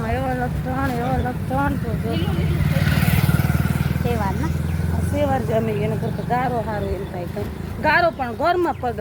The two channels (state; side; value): identical; both; correlation 1.00